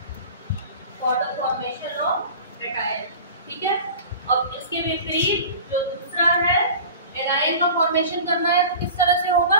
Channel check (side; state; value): both; inverted; correlation -0.38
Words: for the formation of cation, ठीक है। अब इसके विपरीत जो दूसरा है, एनायन का फॉर्मेशन करना है तो किस तरह से होगा,